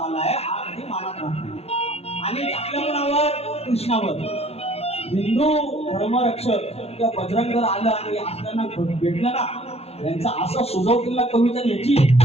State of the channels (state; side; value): late; right; 0.29 ms